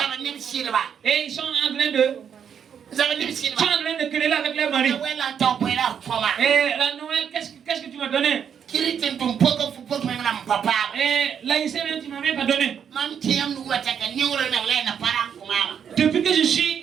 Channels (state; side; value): quieter; left; 7.9 dB